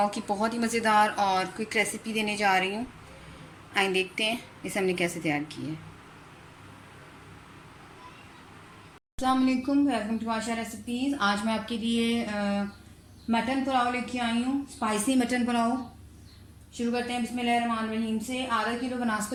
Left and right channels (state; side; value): identical; both; correlation 1.00